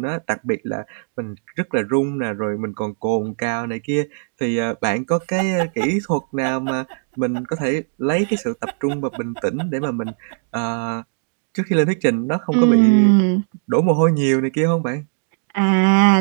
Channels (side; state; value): left; silent; digital silence